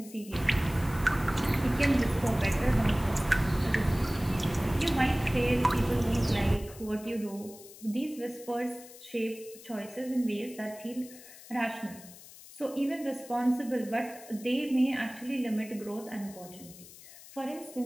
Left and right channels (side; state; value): left; noise; hiss, 18 dB below the sound